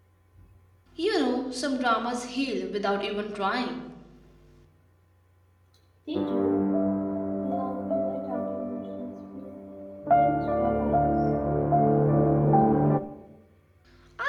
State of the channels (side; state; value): both; identical; correlation 1.00